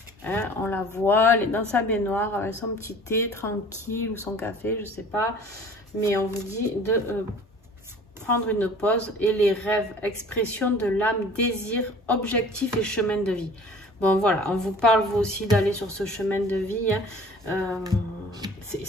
Hein, on la voit, elle est dans sa baignoire avec son petit thé tranquille ou son café, je sais pas. Mais on vous dit de prendre une pause. Et les rêves, expression de l'âme, désir, objectif et chemin de vie. Bon, voilà, on vous parle vous aussi d'aller sur ce chemin de vie. Hein.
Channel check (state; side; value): normal; both; correlation 0.47